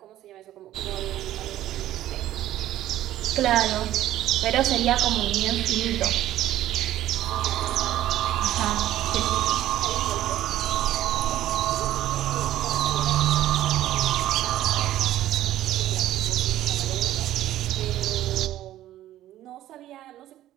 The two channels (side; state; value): left; quieter; 13.5 dB